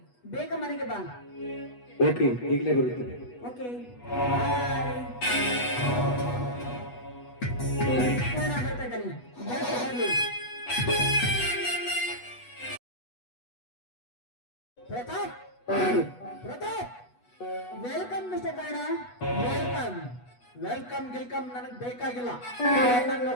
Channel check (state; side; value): late; right; 8.2 ms